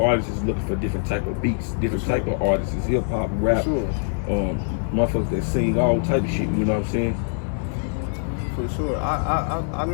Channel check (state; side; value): silent; right; digital silence